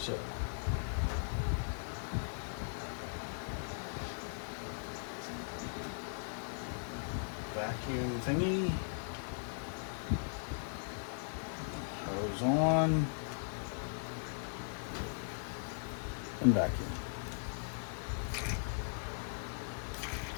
vacuum thingy, hose on, and vacuum.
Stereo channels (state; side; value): silent; right; digital silence